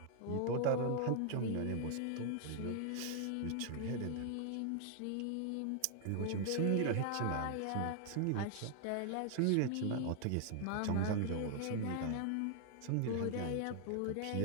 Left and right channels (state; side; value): different; both; correlation 0.00